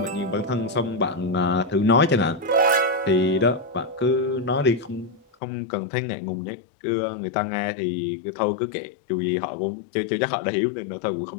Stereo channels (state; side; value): drops out; right; at 5.2 s